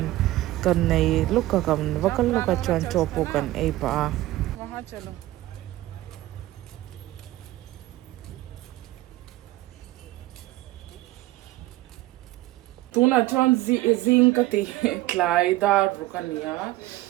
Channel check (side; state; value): left; quieter; 16.8 dB